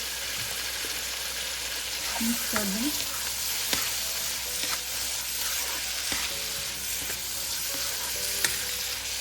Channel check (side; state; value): both; identical; correlation 1.00